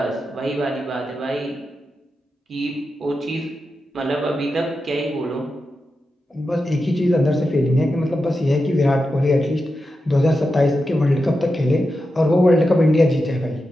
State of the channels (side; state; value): both; normal; correlation 0.89